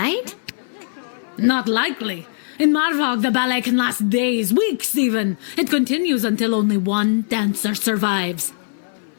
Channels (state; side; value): silent; right; 59 dB below the other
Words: Not likely. In Marvog, the ballet can last days, weeks even. It continues until only one dancer survives.